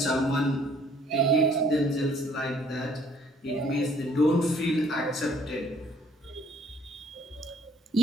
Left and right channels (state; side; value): normal; both; correlation 0.60